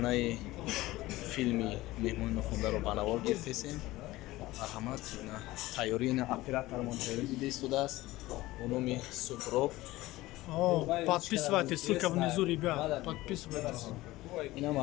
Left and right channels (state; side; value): quieter; right; 18.1 dB